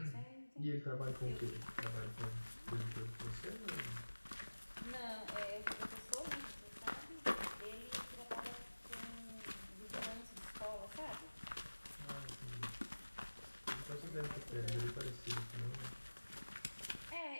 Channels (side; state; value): both; inverted; correlation -1.00